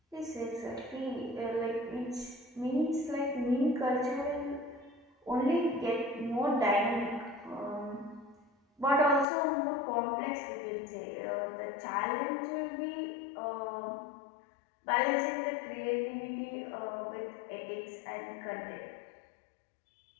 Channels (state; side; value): drops out; right; at 9.2 s